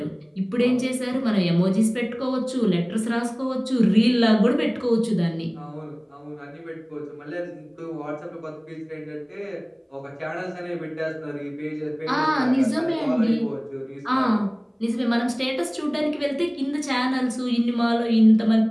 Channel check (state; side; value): identical; both; correlation 1.00